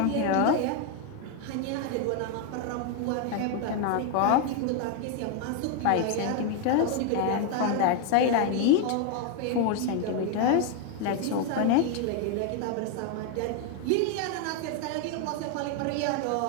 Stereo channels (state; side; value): different; both; correlation 0.01